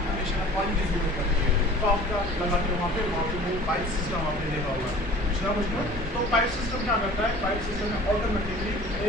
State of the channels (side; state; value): both; normal; correlation 0.45